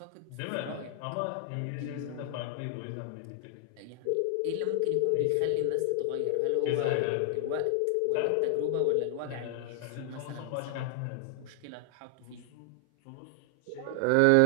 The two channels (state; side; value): different; both; correlation 0.00